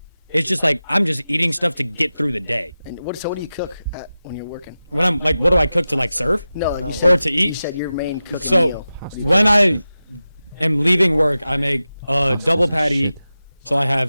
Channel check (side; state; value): both; inverted; correlation -0.94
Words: It's just like I'm just eating stuff to get through the day. And what do you cook when you're working? When I'm like, what do I cook to like serve? No, like you No. said, Or to eat? You said your main cooking So meal. when I am leaving work, I make a double patty. So I